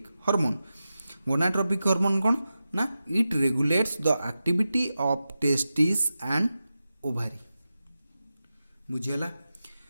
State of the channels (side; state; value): both; inverted; correlation -0.92